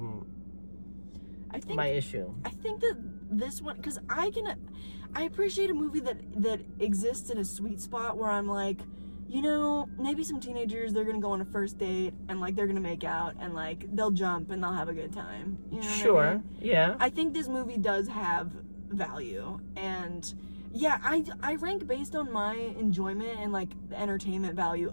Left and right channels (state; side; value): inverted; both; correlation -1.00